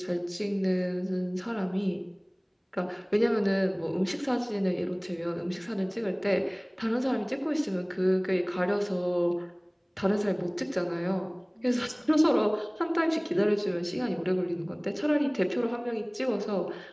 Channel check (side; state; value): both; identical; correlation 1.00